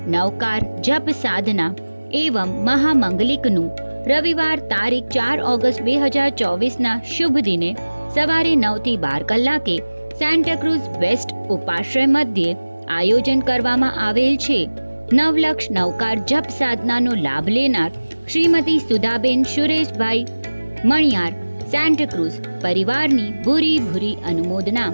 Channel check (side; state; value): both; inverted; correlation -1.00